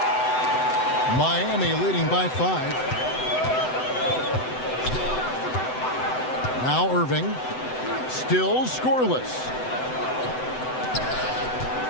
Miami leading by 5. Now Irving. Still scoreless.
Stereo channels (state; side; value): late; right; 7.9 ms